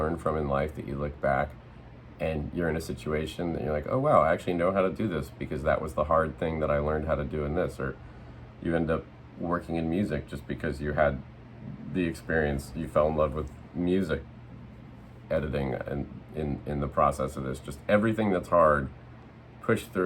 from in life that you look back and you're in a situation that you're like, oh wow, I actually know how to do this because that was the hard thing that I learned how to do in this. Or you end up working in music just because you had the experience, you fell in love with music editing and in the process of this. Just everything that's hard, push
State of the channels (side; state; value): both; identical; correlation 1.00